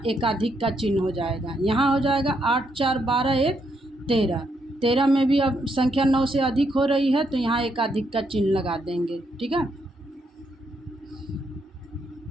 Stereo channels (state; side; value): normal; both; correlation 0.77